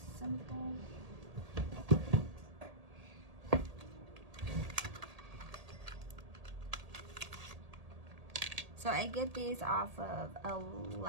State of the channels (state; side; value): late; left; 1.8 ms